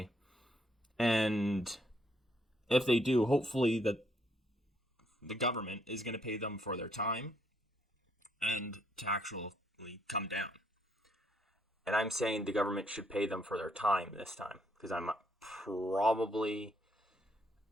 And if they do, hopefully the government is going to pay them for their time and to actually come down. And I'm saying the government should pay them for their time this time, because I'm probably,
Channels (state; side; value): normal; both; correlation 0.72